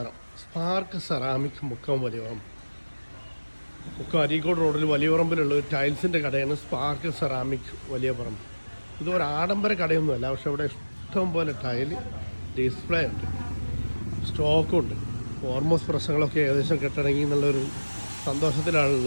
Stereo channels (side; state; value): both; inverted; correlation -1.00